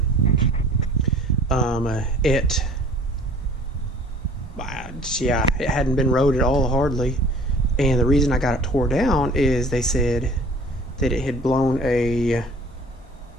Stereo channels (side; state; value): both; normal; correlation 0.49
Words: It hadn't been rode at all hardly. And the reason I got it tore down is they said that it had blown a,